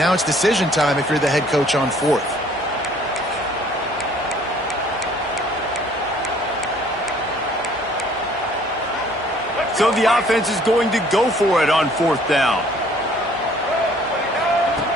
it's decision time if you're the head coach on 4th. So the offense is going to go for it on 4th down.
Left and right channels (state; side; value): normal; both; correlation 0.58